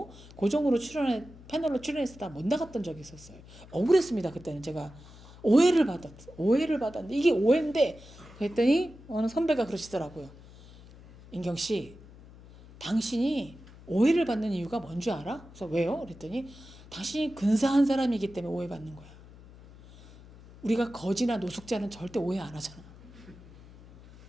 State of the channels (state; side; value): noise; left; hum, 20 dB below the sound